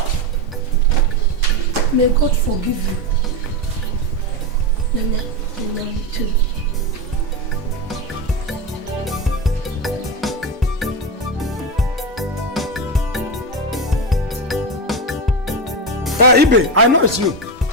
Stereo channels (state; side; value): normal; both; correlation 0.15